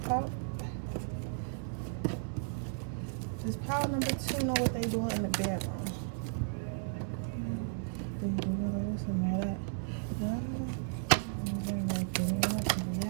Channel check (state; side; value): silent; left; 55 dB below the other